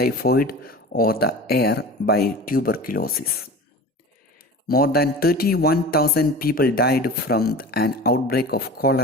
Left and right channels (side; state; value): both; normal; correlation 0.35